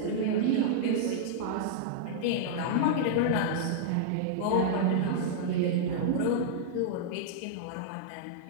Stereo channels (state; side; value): different; both; correlation -0.02